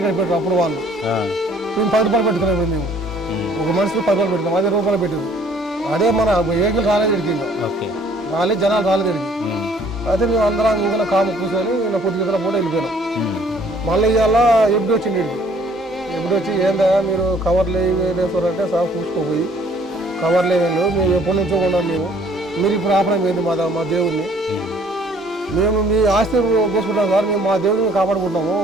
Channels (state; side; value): normal; both; correlation 0.58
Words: పెట్టారు అప్పుడు వాళ్ళు. మేము 10 రూపాయలు పెట్టుకున్నాం. మేము ఒక మనిషికి 10 రూపాయలు పెట్టినాం, 10 రూపాయలు పెట్టారు. అదే మన వెహికల్ రాలేదు ఇడికి, రాలేదు, జనాలు రాలేదు ఇడికి. అయితే మేము అందరం ఇంకా కాము కూర్చొని ఇలా పొద్దు గంటల పూట వెళ్ళిపోయినాం. మళ్ళీ ఇవాళ ఎప్పుడు వచ్చింది ఇడికి. ఎప్పుడు వచ్చి ఏందా మీరు కవర్లు వేసారంటే సాగు చూసుకోపోయి కవర్లు వేయలేదు, మేము ఎప్పటి నుంచో ఉన్నాం. మీరు ఇప్పుడు ఆపడం ఏంది మా దేవుడిని? మేము మీ ఆస్తి కోసుకుంటాం సార్, మేము మా దేవుడిని కాపాడుకుంటాము,